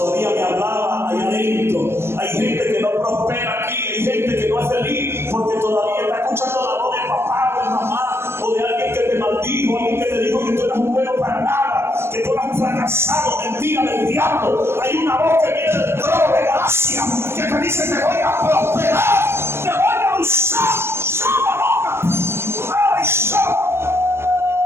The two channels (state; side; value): late; left; 0.12 ms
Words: me hablaba allá adentro. Hay gente que no prospera aquí hay gente que no es feliz porque todavía está escuchando la voz de papá o de mamá o de alguien que te maldijo, alguien que te dijo que tú eres un bueno para nada, que tú eres un fracasado, mentira del diablo. Hay una voz que viene del trono de gracia que te dice: te voy a prosperar, te voy a usar.